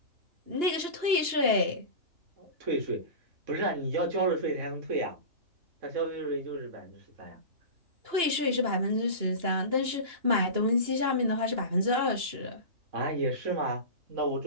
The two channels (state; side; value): late; left; 2.9 ms